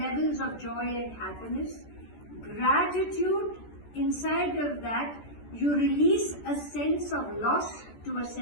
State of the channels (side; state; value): right; late; 14 ms